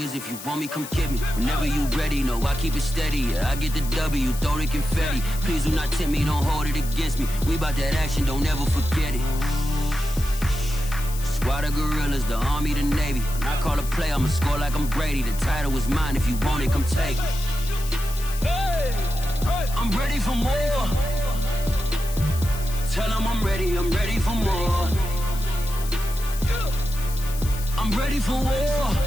if you want me, come get me. Whenever you ready, no, I keep it steady. Yeah, I get the W, throw the confetti. Please do not tempt me, don't hold it against me. We bout that action, don't ever forget it. Squad of gorillas, the army, the navy. When I call a play, I'ma score like I'm Brady. The title is mine, if you want it, come take it. Hey, I'm ready for more. Tell them I'm ready for more. I'm ready for war.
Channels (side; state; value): left; noise; hiss, 12 dB below the sound